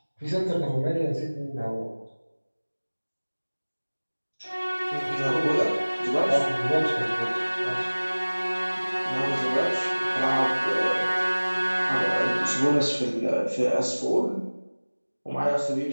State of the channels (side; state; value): both; inverted; correlation -1.00